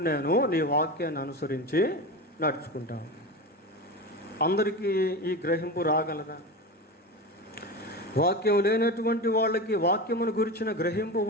నేను నీ వాక్యాన్ని అనుసరించి నడుచుకుంటాను. అందరికీ ఈ గ్రహింపు రాగలదా? వాక్యం లేనటువంటి వాళ్ళకి వాక్యమును గురించిన గ్రహింపు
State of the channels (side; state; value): both; normal; correlation 0.24